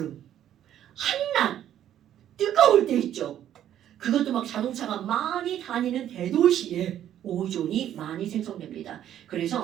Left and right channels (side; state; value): left; quieter; 11.0 dB